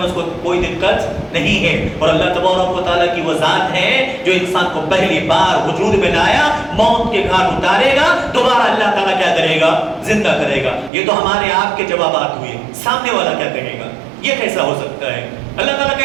اس کو کوئی دقت نہیں ہے، اور اللہ تبارک و تعالیٰ کی وہ ذات ہے جو انسان کو پہلی بار وجود میں لایا، موت کے گھاٹ اتارے گا، دوبارہ اللہ تعالیٰ کیا کرے گا؟ زندہ کرے گا۔ یہ تو ہمارے آپ کے جوابات ہوئے، سامنے والا کیا کہے گا؟ یہ کیسا ہو سکتا ہے؟ اللہ تعالیٰ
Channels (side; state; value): left; drops out; at 10.9 s